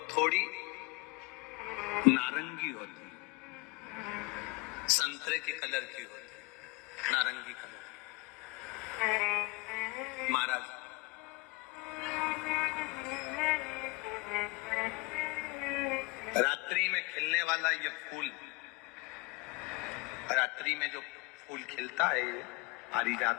थोड़ी नारंगी होती है, संतरे के कलर की होती है, नारंगी कलर। महाराज रात्रि में खिलने वाला ये फूल, रात्रि में जो फूल खिलता है ये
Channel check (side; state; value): right; quieter; 25.4 dB